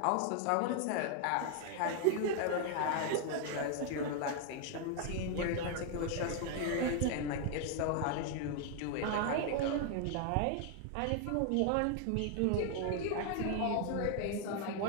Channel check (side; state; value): both; different; correlation 0.00